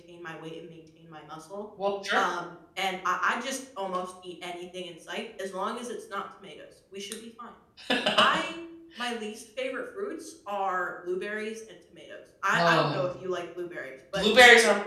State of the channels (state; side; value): identical; both; correlation 1.00